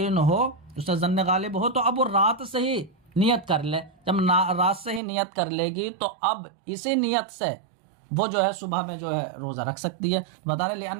ہو، اس سے ظن غالب ہو، تو اب وہ رات سے ہی نیت کر لے. جب رات سے ہی نیت کر لے گی تو اب اسی نیت سے وہ جو ہے صبح میں جو ہے روزہ رکھ سکتی ہے. بتا رہے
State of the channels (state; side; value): drops out; left; at 5.0 s